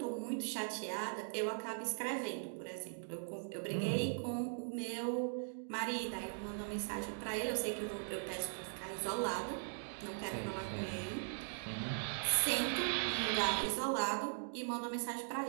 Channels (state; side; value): silent; left; digital silence